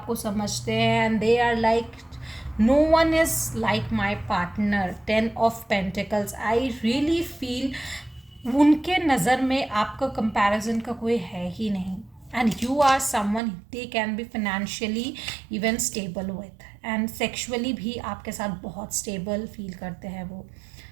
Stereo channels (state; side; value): drops out; left; at 13.4 s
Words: समझते हैं. And they are like no one is like my partner. 10 of pentacles, I really feel उनके नज़र में आपका कंपैरिजन का कोई है ही नहीं. and you are someone they can be financially even stable with, and sexually भी आपके साथ बहुत stable feel करते हैं वो.